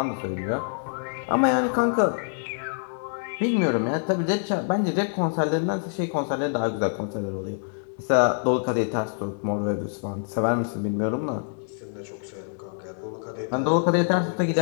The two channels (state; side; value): silent; right; digital silence